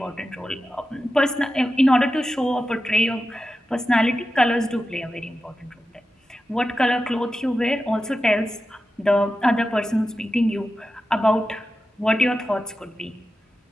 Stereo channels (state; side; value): normal; both; correlation 0.92